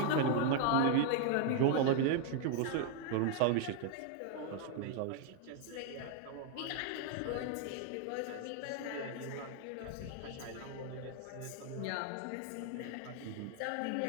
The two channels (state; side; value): different; both; correlation 0.00